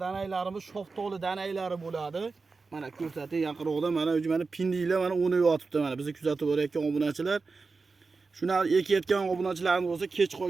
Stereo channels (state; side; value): quieter; left; 4.2 dB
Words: danaylarimiz shoftoli danaylari bo'ladi. Mana ko'rsatib yaqinroqda mana pindilar mana o'nib yotibdi. Mana bizni kuzatib borayotgan obunachilar. Shuni ekayotgan obunachilarimiz bo'lsa, kech